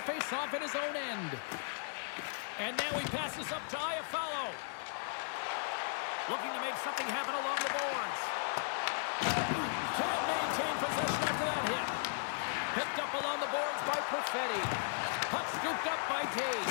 faceoff in his own end. And now he passes up to Iafallo. Looking to make something happen along the boards. Can't maintain possession after that hit. Picked up along the boards by Perfetti. Puck scooped up by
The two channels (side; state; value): right; silent; digital silence